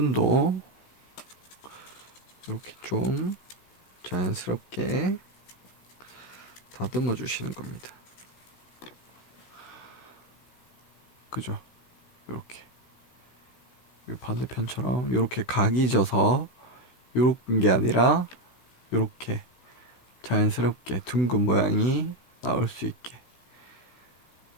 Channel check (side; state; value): right; late; 16 ms